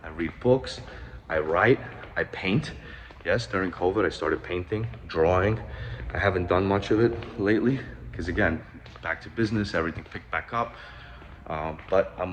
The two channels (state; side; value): identical; both; correlation 1.00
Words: I read books, I write, I paint. Yes, during COVID, I started painting, drawing. I haven't done much of it lately, because again, back to business, everything picked back up. But